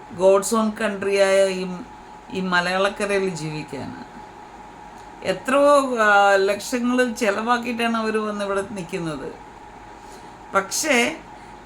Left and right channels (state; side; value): identical; both; correlation 1.00